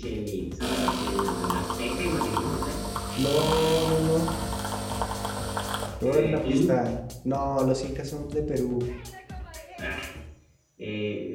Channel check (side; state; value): both; identical; correlation 1.00